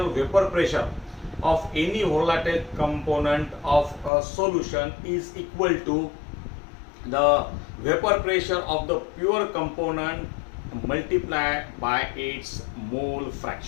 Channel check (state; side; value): drops out; right; at 4.1 s